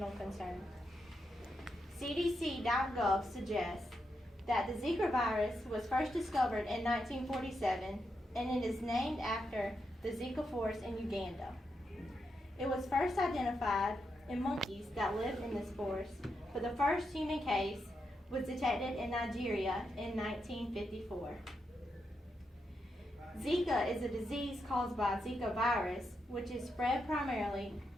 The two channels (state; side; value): normal; both; correlation 0.84